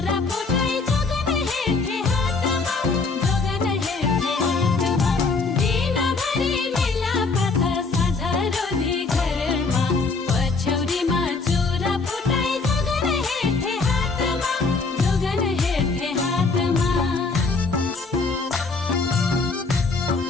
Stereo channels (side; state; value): right; quieter; 4.1 dB